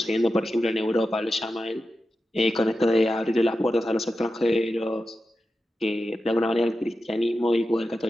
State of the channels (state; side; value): normal; both; correlation 0.91